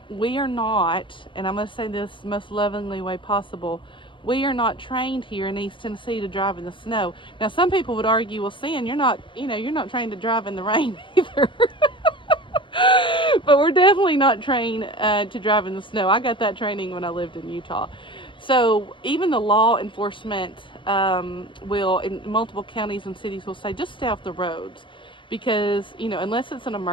We are not, and I'm going to say this most lovingly way possible, we are not trained here in East Tennessee to drive in the snow. Now, some people would argue, well, Sin, you're not trained to drive in the rain either. But we're definitely not trained to drive in the snow. I got that training when I lived in Utah. So even the law enforcement will, in multiple counties and cities, will say, just stay off the roads. Because, unless it's an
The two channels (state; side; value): late; right; 0.24 ms